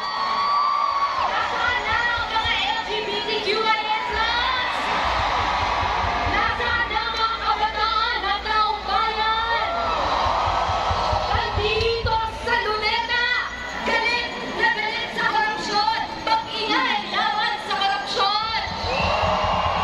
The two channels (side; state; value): both; identical; correlation 1.00